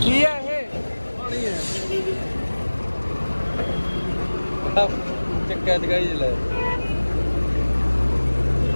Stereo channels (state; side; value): inverted; both; correlation -1.00